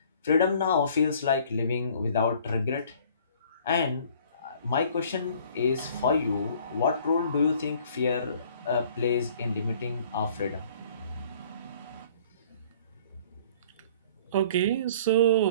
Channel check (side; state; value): both; inverted; correlation -0.54